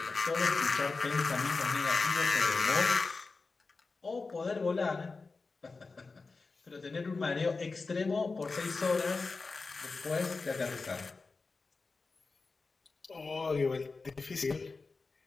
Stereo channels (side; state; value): right; quieter; 4.1 dB